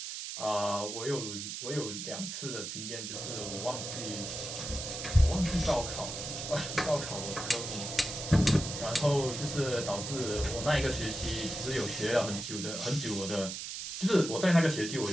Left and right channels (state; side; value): noise; right; hiss, 6 dB below the sound